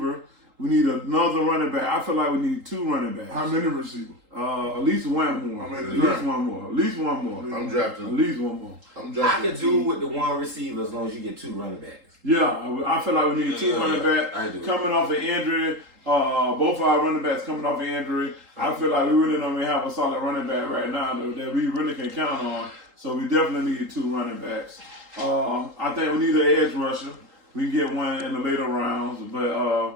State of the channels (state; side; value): late; left; 3.8 ms